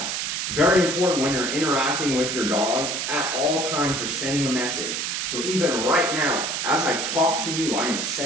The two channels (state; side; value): noise; right; hiss, 2 dB below the sound